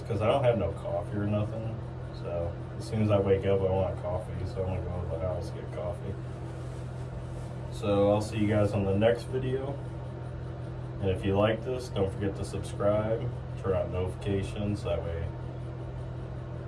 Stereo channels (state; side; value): identical; both; correlation 1.00